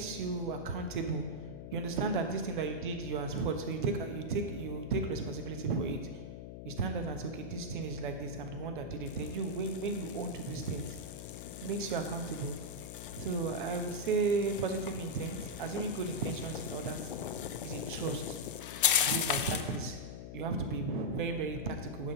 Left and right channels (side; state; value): left; noise; hum, 9 dB below the sound